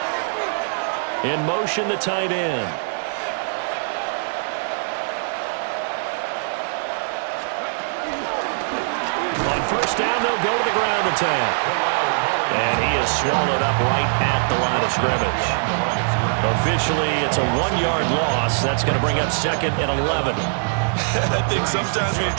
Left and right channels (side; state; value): left; silent; digital silence